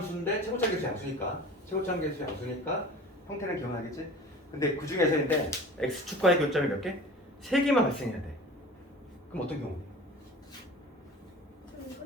최고차 계수 양수니까 형태는 기억나겠지? 근데 그 중에서인데 x축과의 교점이 몇 개? 3개만 발생해야 돼. 그럼 어떤 경우?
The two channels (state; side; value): normal; both; correlation 0.40